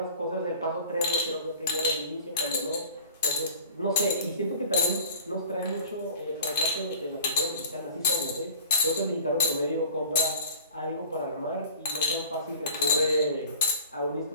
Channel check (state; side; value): inverted; both; correlation -0.44